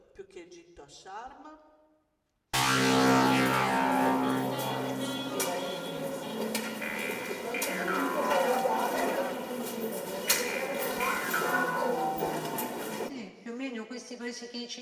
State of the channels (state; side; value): identical; both; correlation 1.00